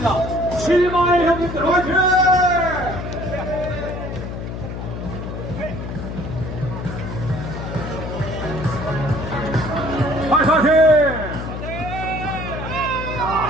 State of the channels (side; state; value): left; noise; hum, 7 dB below the sound